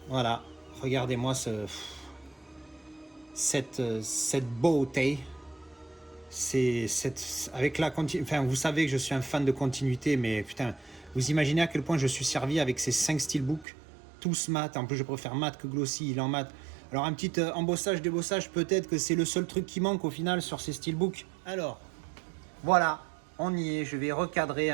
voilà, regardez-moi cette beauté. Avec enfin, vous savez que je suis un fan de continuité, mais putain, vous imaginez à quel point je suis servi avec ces 5 steelbooks, tous mat. En plus, je préfère mat que glossy, il est en mat. Alors, un petit embossage, débossage, peut-être que c'est le seul truc qui manque au final sur ces steelbooks. Alors, voilà, on y est. Je vais recadrer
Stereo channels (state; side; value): drops out; left; at 13.7 s